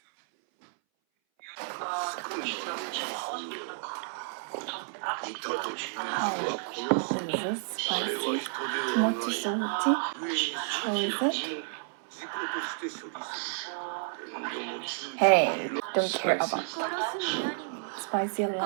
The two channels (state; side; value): silent; left; 57 dB below the other